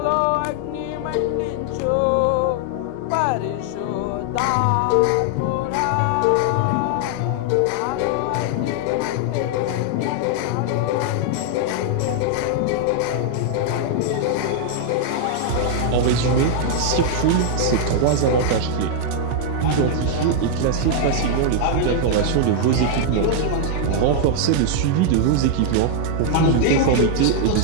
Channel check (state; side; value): different; both; correlation 0.00